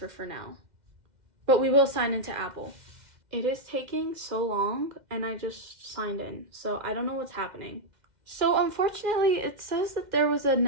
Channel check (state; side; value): late; left; 2.0 ms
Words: for now, but we will sign into Apple. It is taking so long, and I just signed in, so I don't know what's happening. So unfortunately, it says that there was